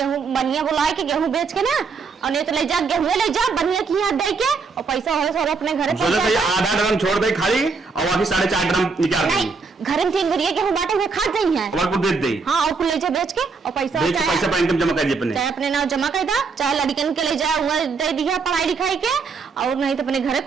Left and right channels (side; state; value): left; quieter; 4.8 dB